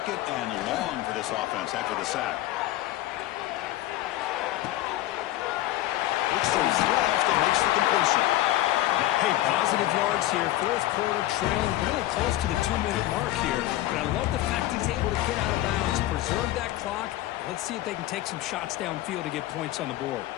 and long for this offense after the sack. Looks to his left and makes the completion. Hey, positive yards here. 4th quarter trailing really close to the 2-minute mark here. But I love the fact he's able to get out of bounds, preserve that clock. Let's see if they can take some shots downfield to get points on the board.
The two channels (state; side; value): quieter; right; 15.3 dB